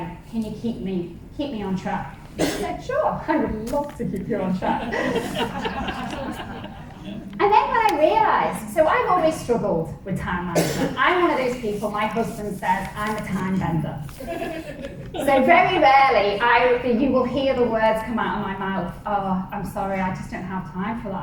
Can you keep me on track? I said, sure, I would love to keep you on track. And then when I realised, so I've always struggled with time management. I'm one of those people, my husband says, I'm a time bender. So very rarely you will hear the words come out of my mouth, oh, I'm sorry, I just don't have time for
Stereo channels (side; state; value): both; identical; correlation 1.00